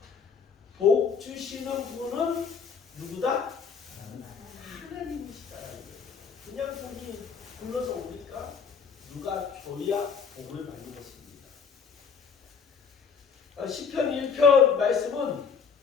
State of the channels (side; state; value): right; quieter; 6.1 dB